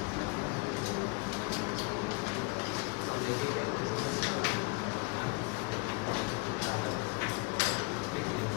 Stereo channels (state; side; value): quieter; right; 29.3 dB